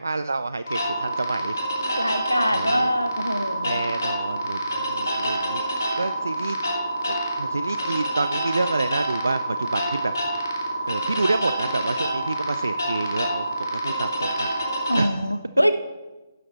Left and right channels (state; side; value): inverted; both; correlation -0.86